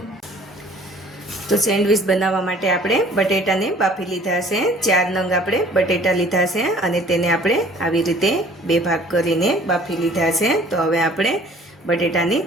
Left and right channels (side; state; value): both; normal; correlation 0.52